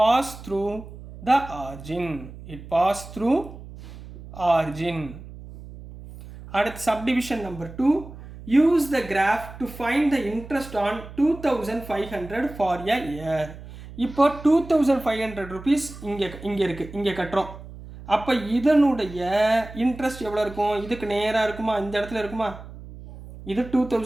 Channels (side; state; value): right; noise; hum, 15 dB below the sound